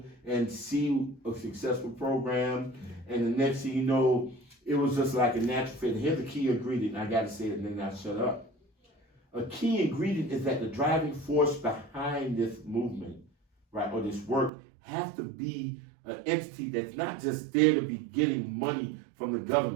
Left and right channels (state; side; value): drops out; left; at 14.5 s